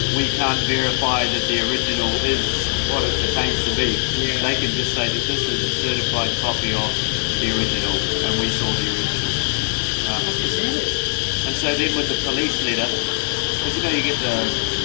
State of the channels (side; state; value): right; silent; digital silence